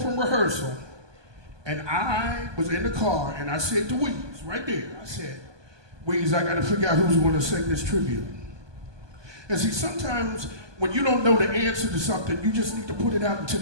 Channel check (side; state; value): left; late; 1.2 ms